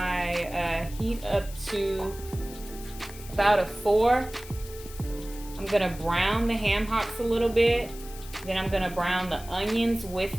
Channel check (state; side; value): noise; left; hiss, 16 dB below the sound